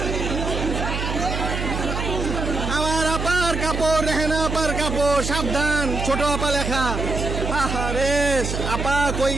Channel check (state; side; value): noise; right; hum, 3 dB below the sound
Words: আমার আপার কাপড়, রেহানা আপার কাপড়। সাবধান ছোট আপা লেখা। আরে আপা কই